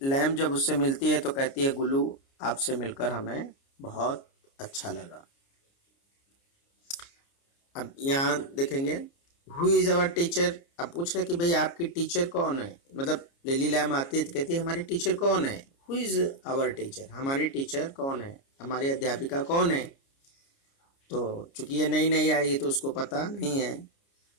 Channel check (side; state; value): right; late; 29 ms